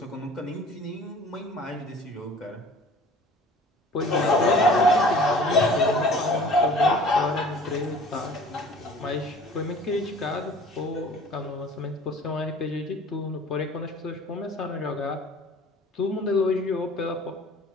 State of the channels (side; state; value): both; normal; correlation 0.47